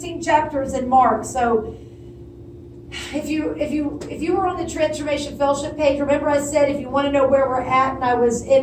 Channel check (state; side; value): identical; both; correlation 1.00